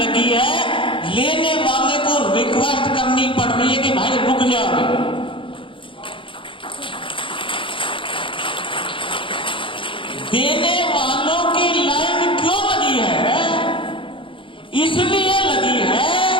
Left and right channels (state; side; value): late; right; 0.25 ms